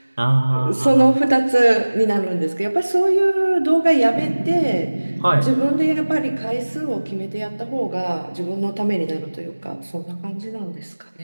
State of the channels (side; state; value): both; inverted; correlation -1.00